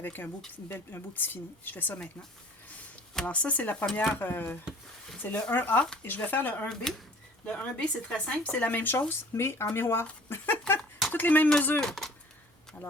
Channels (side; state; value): both; normal; correlation 0.50